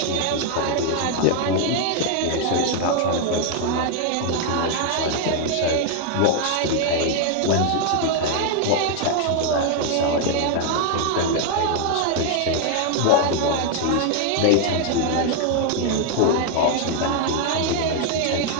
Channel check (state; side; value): different; both; correlation 0.00